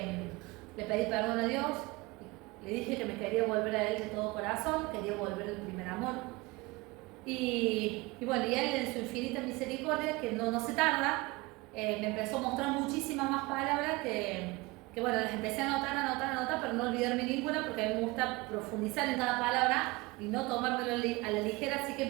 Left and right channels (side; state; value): left; quieter; 23.2 dB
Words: pedí perdón a Dios, le dije que me quería volver a Él de todo corazón, quería volver al primer amor. Y bueno, y Él en su infinita misericordia, que no se tarda, me empezó a mostrar muchísimas más palabras que bueno, las empecé a anotar, pero no olvidarme ninguna, porque a mí me gusta profundizar en cada palabra y no tomármelo a la ligera, así que